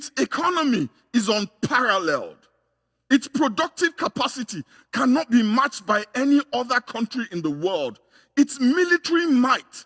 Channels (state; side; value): identical; both; correlation 1.00